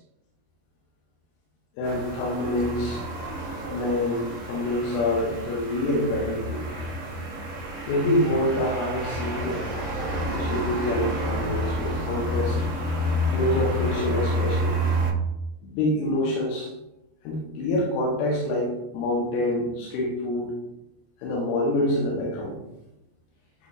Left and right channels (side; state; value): right; late; 25 ms